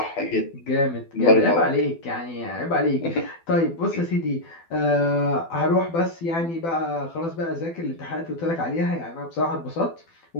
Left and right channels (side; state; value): right; late; 12 ms